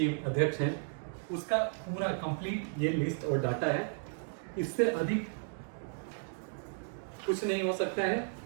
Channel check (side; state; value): left; silent; digital silence